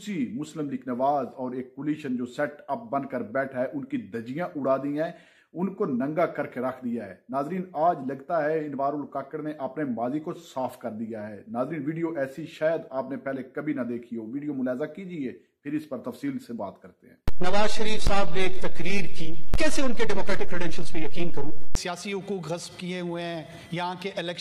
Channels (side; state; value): both; identical; correlation 1.00